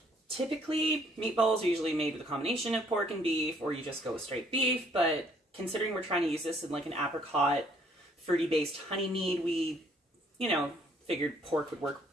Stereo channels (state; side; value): normal; both; correlation 0.63